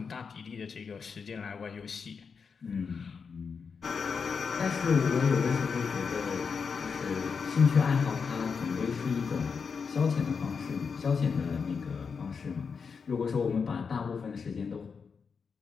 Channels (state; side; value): quieter; right; 5.7 dB